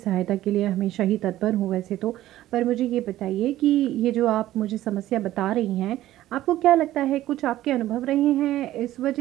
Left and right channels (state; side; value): quieter; left; 14.4 dB